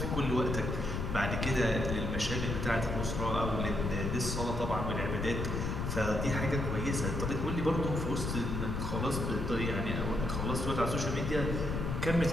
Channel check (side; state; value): left; noise; rumble, 2 dB below the sound